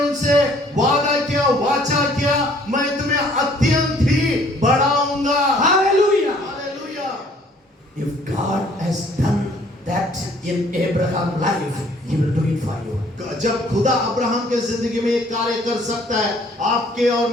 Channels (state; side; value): normal; both; correlation 0.59